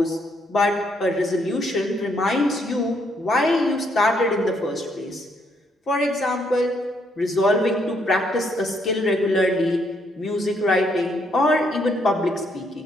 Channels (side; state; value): both; normal; correlation 0.72